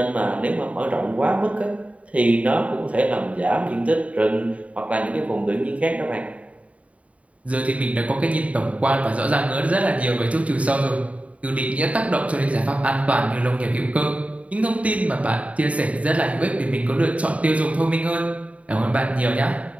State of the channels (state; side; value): late; left; 0.066 ms